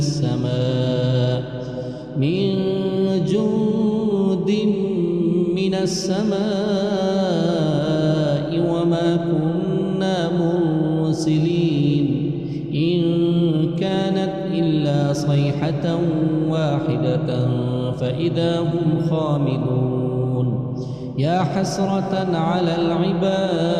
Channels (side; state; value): both; identical; correlation 1.00